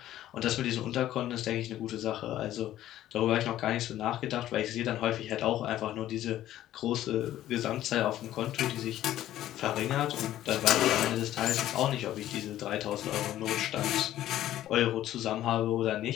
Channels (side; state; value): right; quieter; 13.2 dB